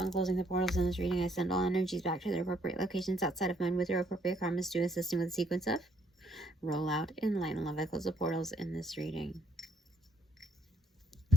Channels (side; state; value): both; normal; correlation 0.67